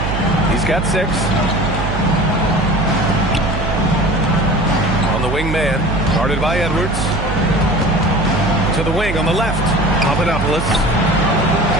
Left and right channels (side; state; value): right; noise; hum, 5 dB below the sound